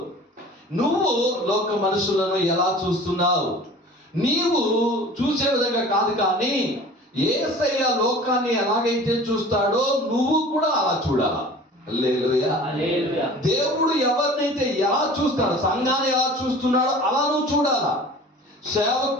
నువ్వు లోక మనుషులను ఎలా చూస్తున్నావు. నీవు చూసే విధంగా కాదు, కానీ యేసయ్య లోకాన్ని ఎలాగైతే చూస్తాడో నువ్వు కూడా అలా చూడాలా. హల్లెలూయా. దేవుడు ఎవరినైతే ఎలా చూస్తాడో, సంఘాన్ని ఎలా చూస్తున్నాడో అలా నువ్వు చూడాలా.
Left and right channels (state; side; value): normal; both; correlation 0.43